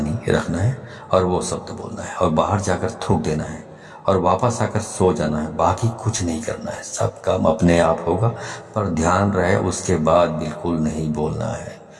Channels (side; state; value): both; identical; correlation 1.00